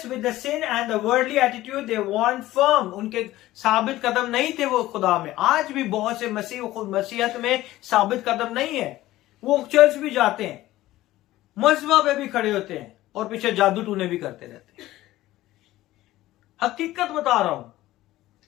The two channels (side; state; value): right; quieter; 16.1 dB